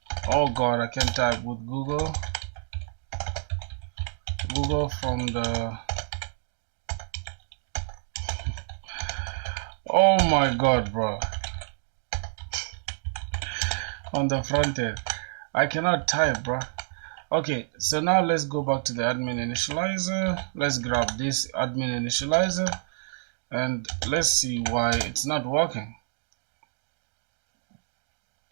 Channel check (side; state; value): left; silent; digital silence